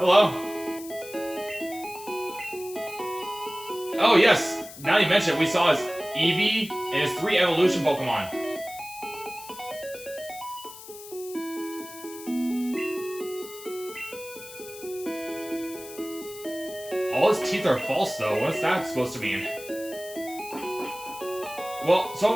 Oh, yes. Now you mention it, we saw his Eevee and his 3 evolution Pokemon. All his teeth are false, though. What's that supposed to mean? Well,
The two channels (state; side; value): noise; left; hiss, 15 dB below the sound